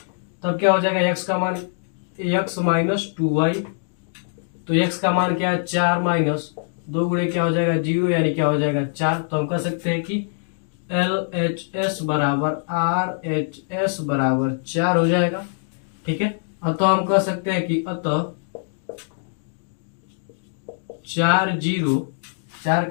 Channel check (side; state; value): right; silent; digital silence